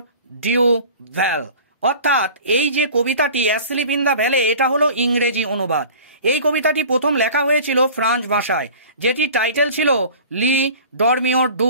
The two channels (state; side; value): inverted; both; correlation -0.42